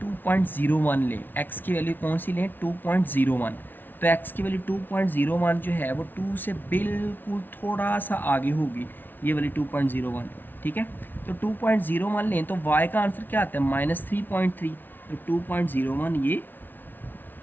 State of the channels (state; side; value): late; right; 0.090 ms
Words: 2.01 लें, x की वैल्यू कौन सी लें, 2.01, तो x की वैल्यू 2.01 जो है वो 2 से बिल्कुल थोड़ा सा आगे होगी, ये वाली 2.01। ठीक है। तो 2.01 लें तो y का आंसर क्या आता है, -3.3। तो 2.01 ये